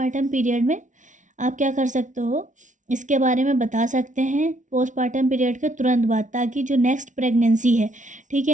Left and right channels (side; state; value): left; late; 0.37 ms